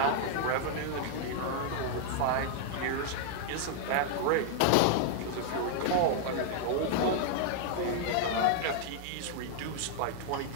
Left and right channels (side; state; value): both; different; correlation -0.01